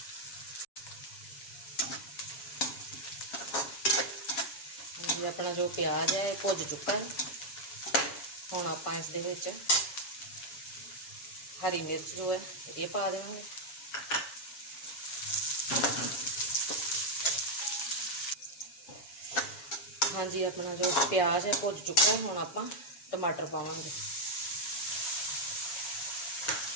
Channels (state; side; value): late; right; 7.2 ms